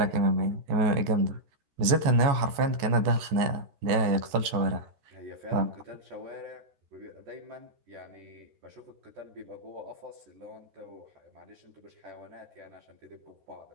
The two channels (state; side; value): late; left; 14 ms